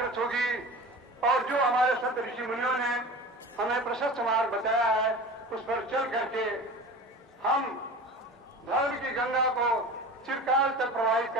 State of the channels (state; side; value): normal; both; correlation 0.35